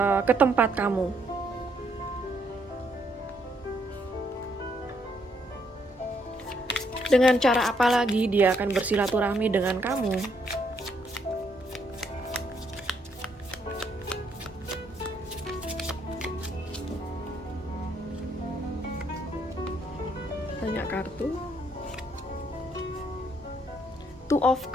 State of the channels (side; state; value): both; normal; correlation 0.72